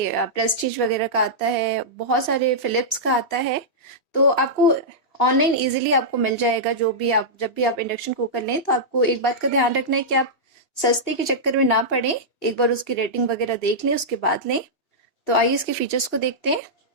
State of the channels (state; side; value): late; right; 2.9 ms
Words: प्रेस्टीज वगैरह का आता है, बहुत सारे फिलिप्स का आता है। तो आपको ऑनलाइन इजीली आपको मिल जाएगा। जो भी आप जब भी आप इंडक्शन कुकर लें तो आपको एक बात का ध्यान रखना है कि आप सस्ते के चक्कर में ना पड़े, एक बार उसकी रेटिंग वगैरह देख लें उसके बाद लें। तो आइए इसके फीचर्स को देखते हैं।